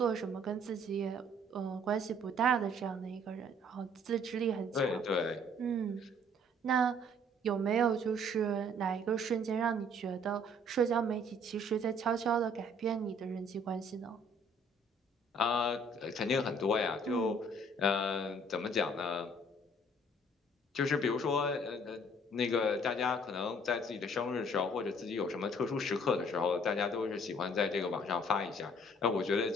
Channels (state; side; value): normal; both; correlation 0.58